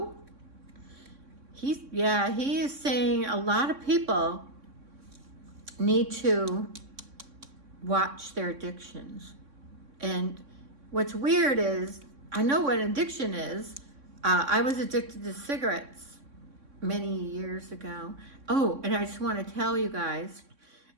He is saying a lot of people need to watch their addictions. And what's weird is, I know what addiction is. I was addicted to cigarettes many years ago. Oh, and I just want to tell you guys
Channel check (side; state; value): left; late; 3.6 ms